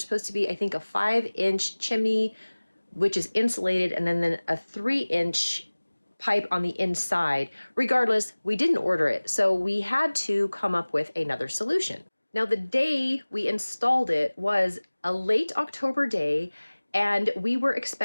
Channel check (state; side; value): inverted; both; correlation -1.00